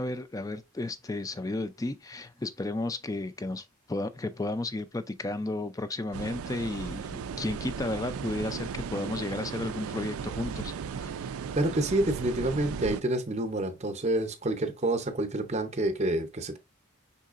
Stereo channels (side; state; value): both; normal; correlation 0.58